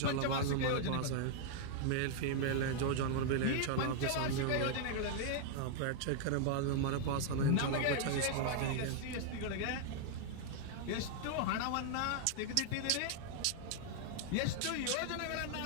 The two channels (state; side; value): different; both; correlation -0.01